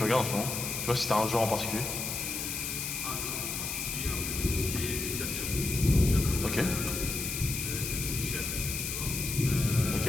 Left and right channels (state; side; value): noise; left; hiss, 3 dB below the sound